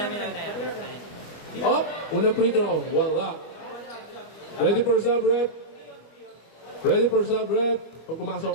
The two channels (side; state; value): right; late; 25 ms